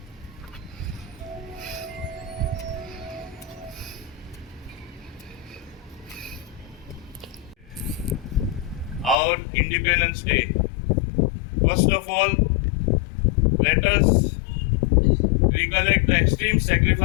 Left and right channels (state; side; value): drops out; right; at 9.2 s